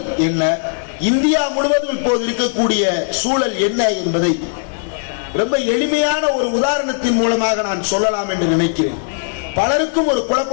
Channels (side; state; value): right; silent; digital silence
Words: என்ன, இந்தியா முழுவதும் இப்போது இருக்கக்கூடிய சூழல் என்ன என்பதை ரொம்ப எளிமையான ஒரு உதாரணத்தின் மூலமாக நான் சொல்லலாம் என்று நினைக்கிறேன். பலருக்கும் ஒரு